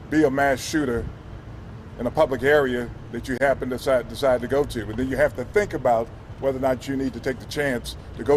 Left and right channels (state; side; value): identical; both; correlation 1.00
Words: be a mass shooter in a public area that you happen to decide to go to. And then you have to think about whether or not you need to take the chance to